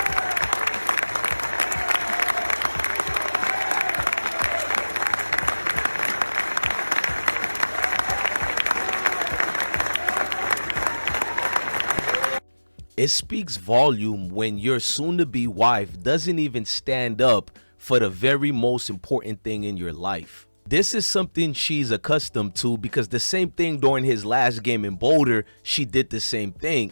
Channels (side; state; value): both; inverted; correlation -1.00